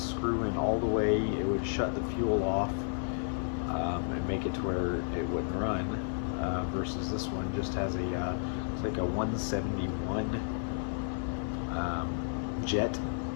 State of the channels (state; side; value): silent; right; digital silence